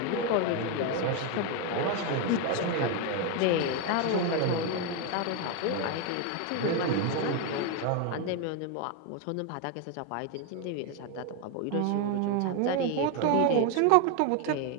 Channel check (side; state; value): both; different; correlation 0.01